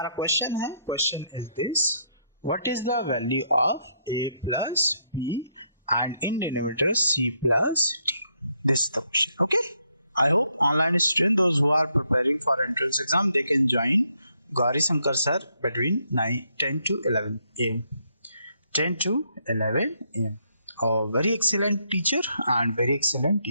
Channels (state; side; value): inverted; both; correlation -0.74